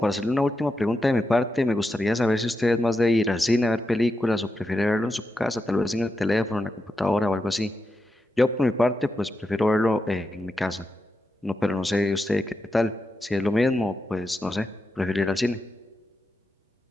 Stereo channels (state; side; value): normal; both; correlation 0.87